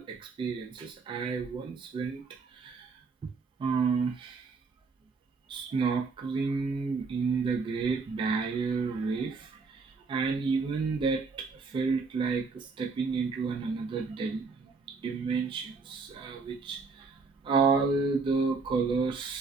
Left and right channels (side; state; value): left; quieter; 4.5 dB